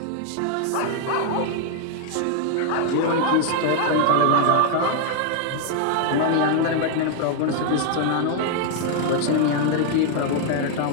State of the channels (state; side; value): different; both; correlation 0.00